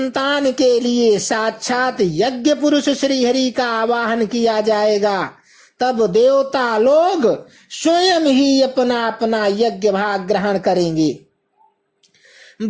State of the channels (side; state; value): both; identical; correlation 1.00